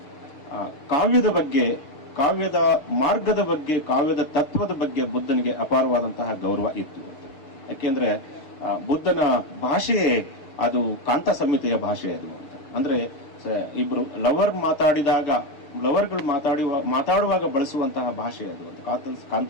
ಕಾವ್ಯದ ಬಗ್ಗೆ, ಕಾವ್ಯದ ಮಾರ್ಗದ ಬಗ್ಗೆ, ಕಾವ್ಯದ ತತ್ವದ ಬಗ್ಗೆ ಬುದ್ಧನಿಗೆ ಅಪಾರವಾದಂತಹ ಗೌರವ ಇತ್ತು. ಯಾಕೆಂದ್ರೆ ಬುದ್ಧನ ಭಾಷೆಯೇ ಅದು ಕಾಂತ ಸಂಹಿತೆಯ ಭಾಷೆ ಅದು ಅಂತ. ಅಂದ್ರೆ ಇಬ್ರು ಲವರ್ಗಳು ಮಾತಾಡುವಾಗ ಬಳಸುವಂತಹ ಭಾಷೆ ಅದು ಅಂತ.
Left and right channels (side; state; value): right; late; 6.6 ms